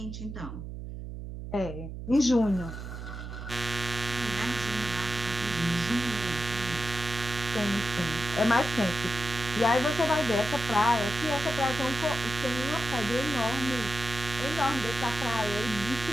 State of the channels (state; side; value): noise; right; hum, 8 dB below the sound